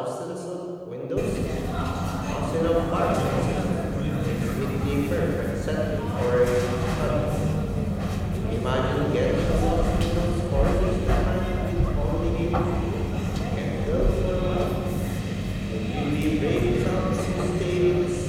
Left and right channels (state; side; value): identical; both; correlation 1.00